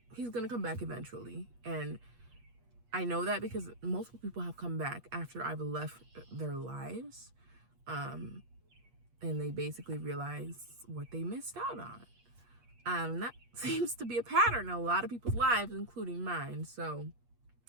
He's going to come back eventually. And I know that because multiple people have come back after I've left their lives. And they basically realize what they missed out on. That seems to be a pattern in a lot of people's lives, including mine. So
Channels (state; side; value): late; left; 8.4 ms